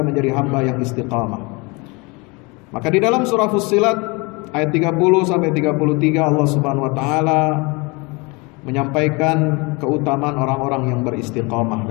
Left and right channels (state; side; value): quieter; right; 27.6 dB